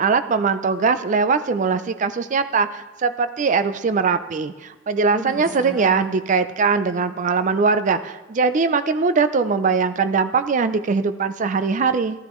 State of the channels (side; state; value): left; quieter; 4.5 dB